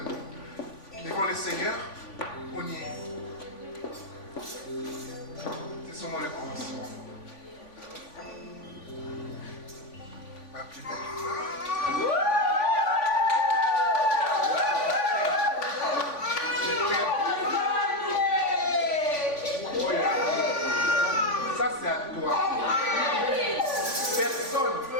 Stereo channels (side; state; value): right; late; 3.5 ms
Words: devant le Seigneur. On y est. C'est seulement le commencement. Ma plus belle femme. Ça c'est à toi.